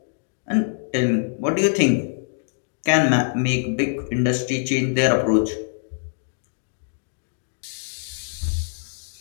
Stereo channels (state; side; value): silent; right; digital silence